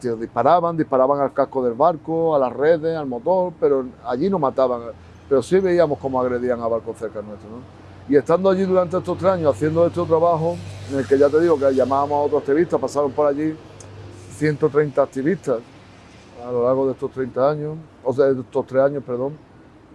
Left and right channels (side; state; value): both; identical; correlation 1.00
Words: disparaban al casco del barco, a las redes, al motor, pero allí no mataban. Pero sí veíamos cómo agredían a barcos cerca nuestro, ¿no? Y estando allí durante estos 3 años, haciendo este trabajo, en el que ya te digo que llamábamos a otros activistas, pasaron por allí 130 activistas a lo largo de estos 30 años, o sea, de estos 3 años, perdón.